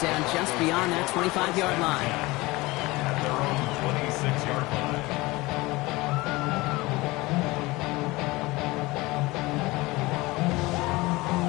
down just beyond that 25-yard line. At their own 26-yard line.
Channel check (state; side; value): quieter; right; 21.6 dB